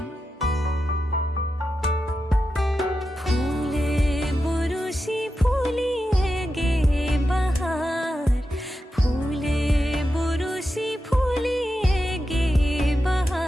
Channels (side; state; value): both; normal; correlation 0.89